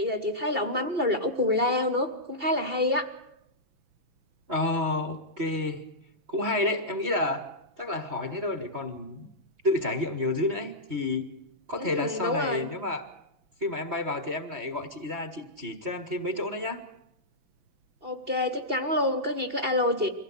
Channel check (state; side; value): late; left; 6.0 ms